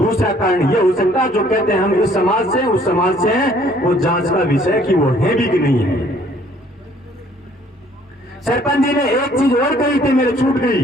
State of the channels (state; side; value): normal; both; correlation 0.60